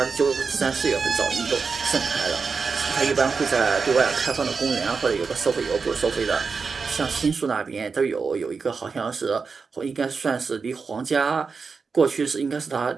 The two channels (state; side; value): quieter; left; 5.0 dB